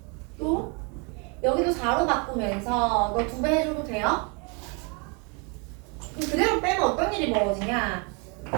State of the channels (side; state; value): left; quieter; 33.2 dB